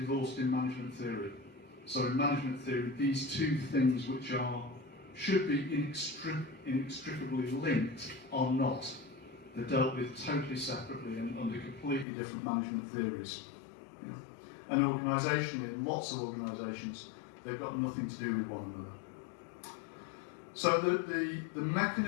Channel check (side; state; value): right; drops out; at 12.1 s